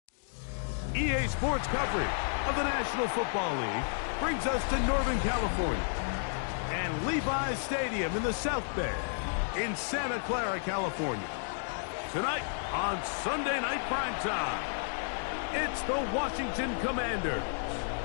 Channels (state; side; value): silent; right; digital silence